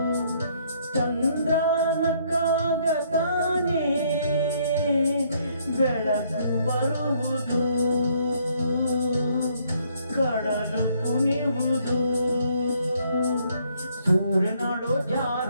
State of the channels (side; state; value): both; inverted; correlation -0.67